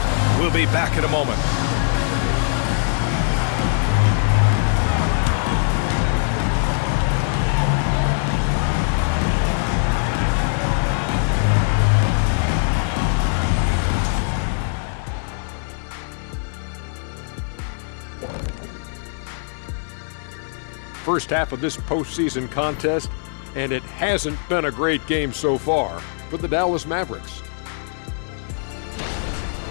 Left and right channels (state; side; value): silent; right; 58 dB below the other